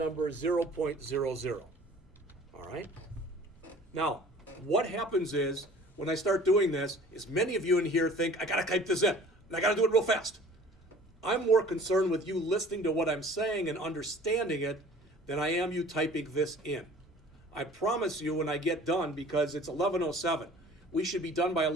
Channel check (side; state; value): both; normal; correlation 0.48